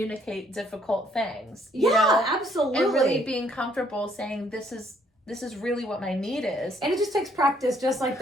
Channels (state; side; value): normal; both; correlation 0.66